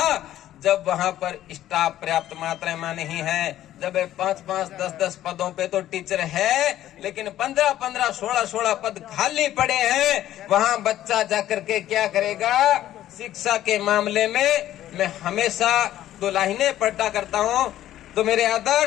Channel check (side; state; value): right; quieter; 13.0 dB